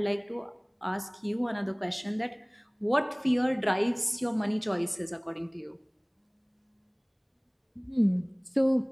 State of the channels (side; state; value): both; identical; correlation 1.00